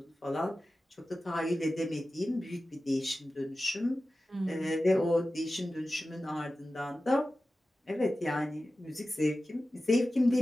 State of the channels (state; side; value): normal; both; correlation 0.94